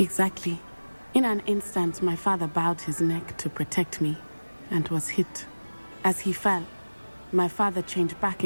In an instant, my father bowed his neck to protect me and was hit. As he fell, my father changed back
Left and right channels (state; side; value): inverted; both; correlation -1.00